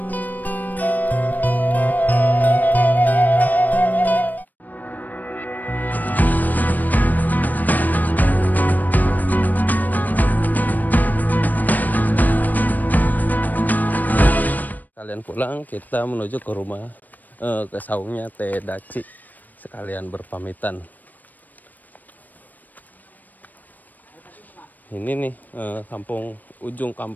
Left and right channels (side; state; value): right; late; 0.084 ms